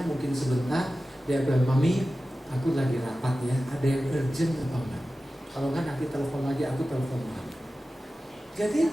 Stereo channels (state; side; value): normal; both; correlation 0.95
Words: mungkin sebentar. Dia bilang, mami, aku lagi rapat ya, ada yang urgent apa enggak? Kalau enggak nanti telepon lagi, aku telepon lagi.